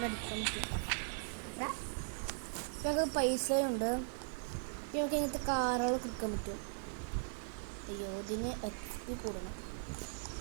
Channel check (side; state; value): left; silent; digital silence